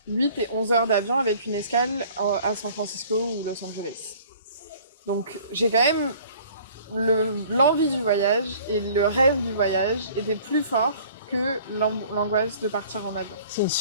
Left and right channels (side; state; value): both; inverted; correlation -0.51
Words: 8 et 11 heures d'avion avec une escale à San Francisco ou Los Angeles. Donc, j'ai quand même l'envie du voyage et le rêve du voyage était plus fort que l'angoisse de partir en avion. C'est une